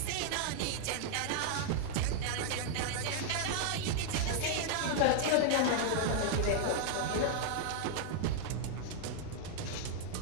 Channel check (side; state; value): both; different; correlation -0.01